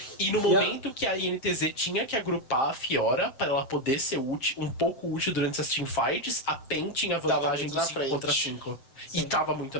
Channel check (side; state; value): right; late; 7.8 ms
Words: E no momento que a INTZ tinha que agrupar a Fiora para ela poder ser um pouco útil durante as teamfights, a PEN tinha vantagem do 5 contra 5. E tava muito